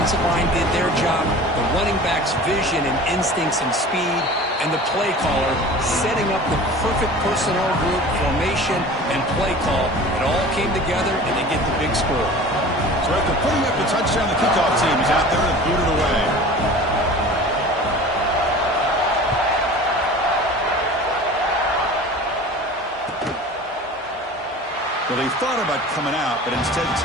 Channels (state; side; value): normal; both; correlation 0.40